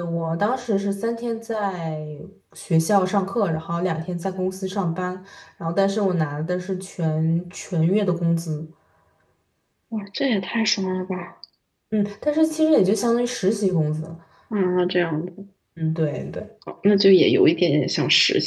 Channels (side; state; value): both; identical; correlation 1.00